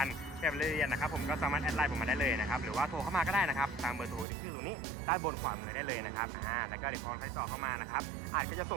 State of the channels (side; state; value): left; drops out; at 4.2 s